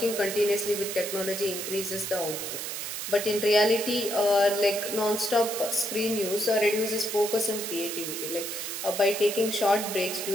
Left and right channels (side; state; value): right; noise; hiss, 5 dB below the sound